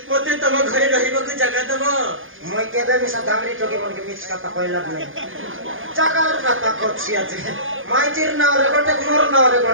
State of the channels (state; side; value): late; left; 0.58 ms